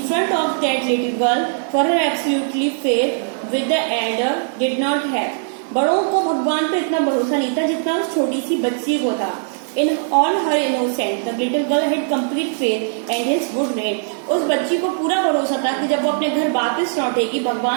of that little girl for her absolutely faith with the elder did not have. बड़ों को भगवान पे इतना भरोसा नहीं था जितना उस छोटी सी बच्ची को था. In all her innocence, the little girl had complete faith and his would rain. उस बच्ची को पूरा भरोसा था कि जब वो अपने घर वापस लौटेगी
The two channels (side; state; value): left; silent; 57 dB below the other